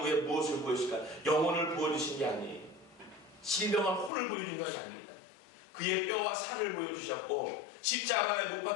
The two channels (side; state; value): right; drops out; at 4.1 s